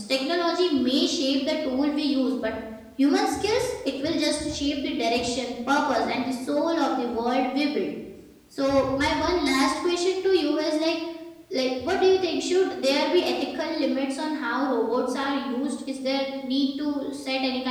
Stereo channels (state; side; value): identical; both; correlation 1.00